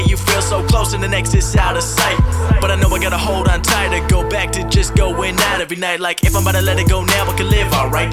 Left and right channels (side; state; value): both; identical; correlation 1.00